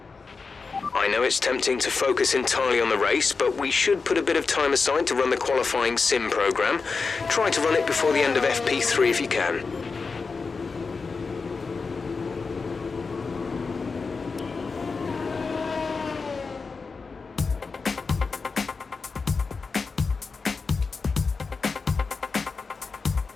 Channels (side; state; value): right; quieter; 4.6 dB